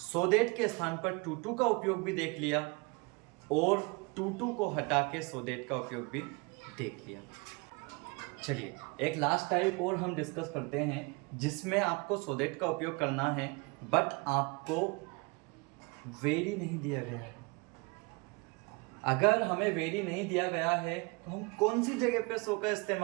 दैट के स्थान पर टू टू का उपयोग भी देख लिया और टू टू को हटा के सो दैट का उपयोग भी देख लिया। चलिए एक लास्ट टाइप और हम डिस्कस करते हैं जिसमें आपको सो दैट का उपयोग करना है बट आपको वेरी नहीं दिया गया है। अगर हमें वेरी नहीं दिया गया है तो हम कौन सी जगह पे सो का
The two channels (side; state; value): left; quieter; 29.0 dB